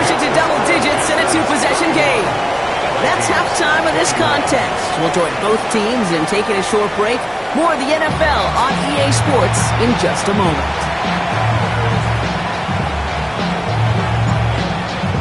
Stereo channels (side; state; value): both; identical; correlation 1.00